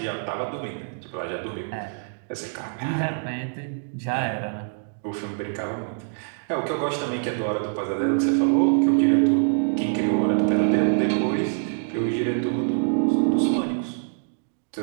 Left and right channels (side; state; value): left; silent; digital silence